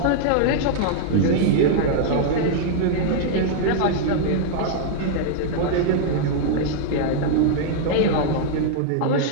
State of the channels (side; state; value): both; different; correlation -0.01